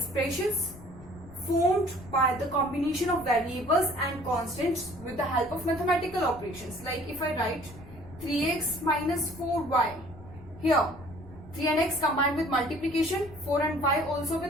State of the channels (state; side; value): noise; left; rumble, 19 dB below the sound